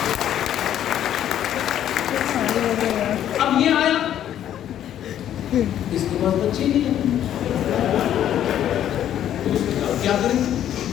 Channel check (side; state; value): right; quieter; 10.9 dB